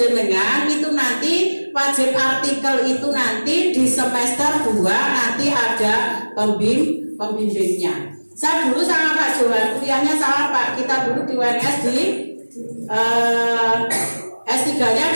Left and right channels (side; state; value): both; inverted; correlation -1.00